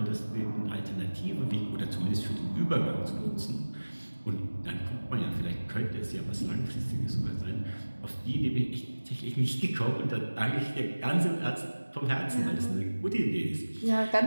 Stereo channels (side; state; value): both; inverted; correlation -1.00